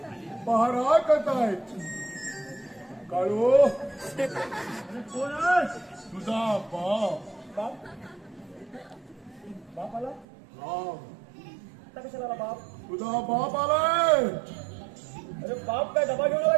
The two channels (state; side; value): drops out; left; at 10.2 s